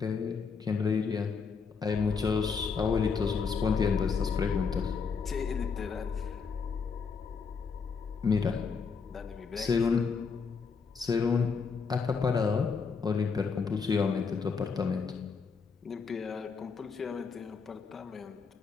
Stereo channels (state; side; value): quieter; right; 5.4 dB